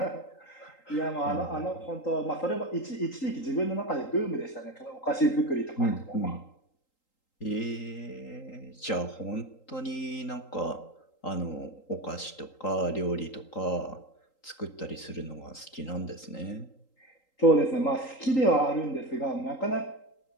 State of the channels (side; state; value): right; late; 3.8 ms